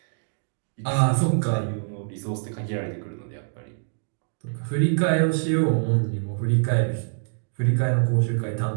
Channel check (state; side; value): silent; left; digital silence